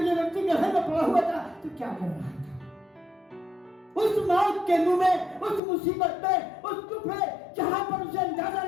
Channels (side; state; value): right; drops out; at 5.6 s